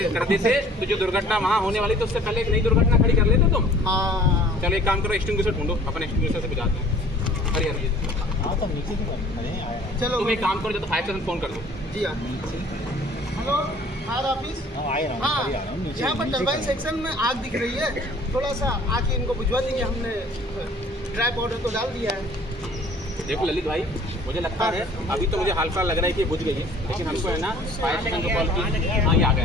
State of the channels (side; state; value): both; normal; correlation 0.52